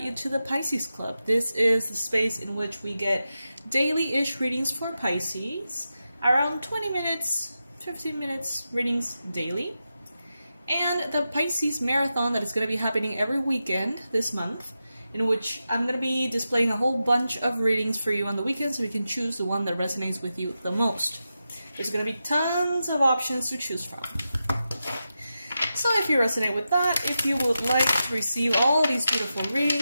you to the Pisces Club. This is the space in which we get daily-ish readings for Pisces, around 20 minutes, 15 minutes readings daily. And the Pisces Marathon that is going to be happening every weekend this month, in which I'm going to be displaying a whole bunch of readings for you on the weekend so you can choose the one that resonates with you the most. There's going to be tons of options to choose from. So if you resonate with that, if you would like to receive all these beautiful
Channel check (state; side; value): inverted; both; correlation -0.90